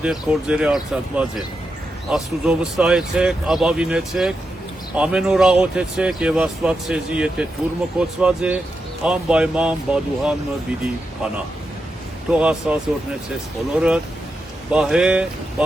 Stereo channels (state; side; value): normal; both; correlation 0.87